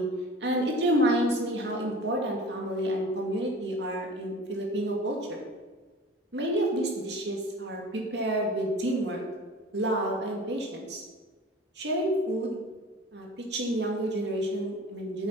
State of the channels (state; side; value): normal; both; correlation 0.41